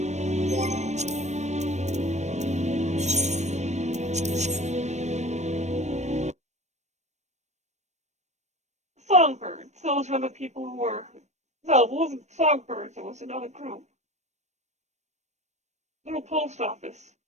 Songbirds. Those were the people who were... No, it wasn't Songbirds. It was another group. Little Post Office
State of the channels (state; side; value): late; left; 0.33 ms